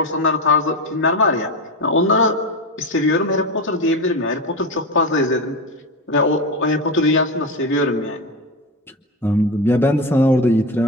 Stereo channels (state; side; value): normal; both; correlation 0.19